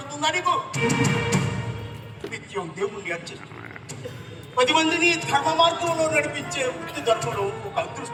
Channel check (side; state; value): both; identical; correlation 1.00